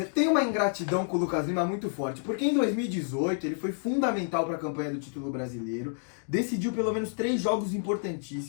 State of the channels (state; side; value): silent; right; digital silence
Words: tem uma ingratidão com o Lucas Lima muito forte, porque em 2018 ele foi fundamental para a campanha do título brasileiro, decidiu pelo menos 3 jogos